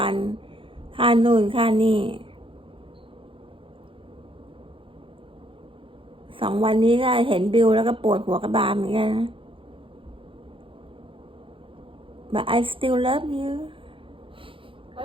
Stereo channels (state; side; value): late; left; 0.25 ms